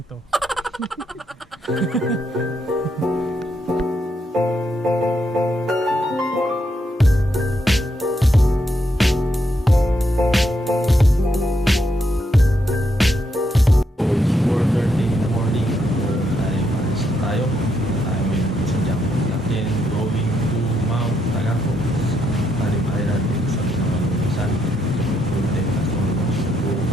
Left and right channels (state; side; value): normal; both; correlation 0.78